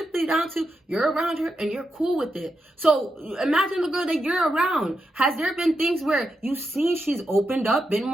down to you're around her and you're cool with it. So imagine the girl that you're around. Has there been things where you've seen she's opened up, been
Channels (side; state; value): both; normal; correlation 0.86